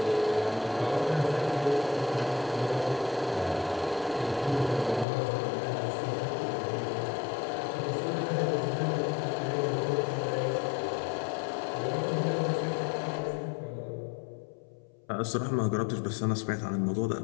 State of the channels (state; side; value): drops out; right; at 5.1 s